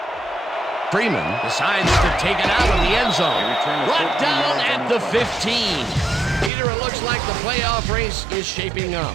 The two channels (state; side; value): drops out; left; at 6.5 s